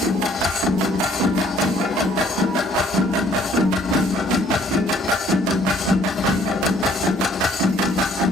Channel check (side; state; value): both; normal; correlation 0.61